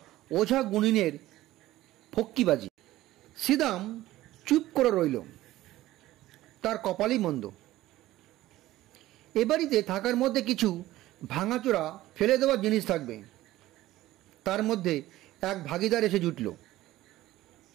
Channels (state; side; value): quieter; left; 15.8 dB